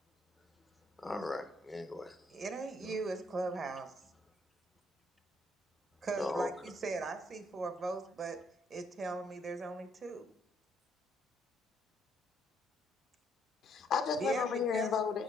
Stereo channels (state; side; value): normal; both; correlation 0.70